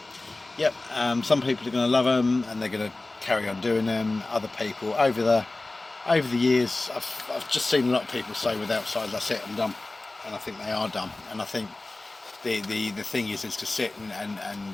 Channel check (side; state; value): right; quieter; 3.0 dB